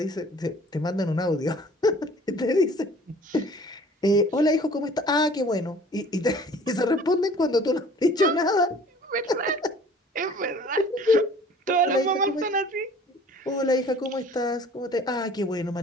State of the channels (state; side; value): normal; both; correlation 0.49